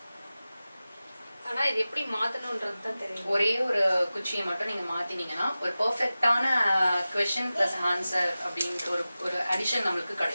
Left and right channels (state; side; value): inverted; both; correlation -0.96